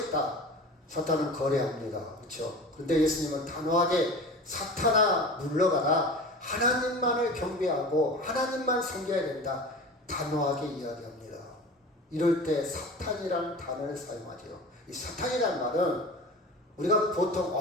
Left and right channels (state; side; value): normal; both; correlation 0.35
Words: 사탄은 거래합니다. 그렇죠? 그런데 예수님은 단호하게 사탄아 물러가라. 하나님만을 경배하고 하나님만 섬겨야 된다. 단호하게 이야기합니다. 이럴 때 사탄이라는 단어를 사용하죠. 이 사탄이라는 말은 우리가